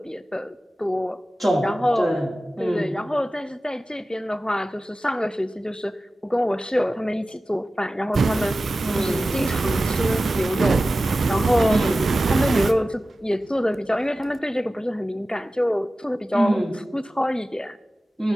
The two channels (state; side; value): normal; both; correlation 0.95